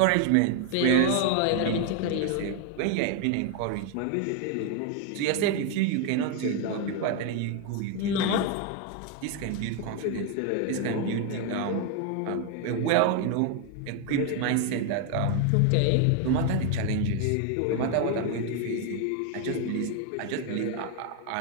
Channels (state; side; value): different; both; correlation 0.01